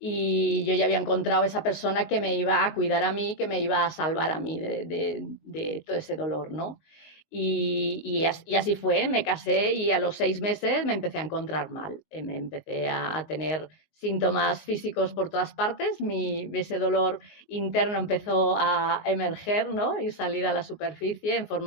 yo ya había encontrado esa persona que me iba a cuidar a mí, que me iba a salvar a mí de todo ese dolor, ¿no? Y así fue, me casé y a los 6 meses me empecé a encontrar mal, me empecé a tener síntomas físicos por todas partes, ese dolor interno empezó a emerger, ¿no? Y salir a la superficie en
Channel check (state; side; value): late; right; 19 ms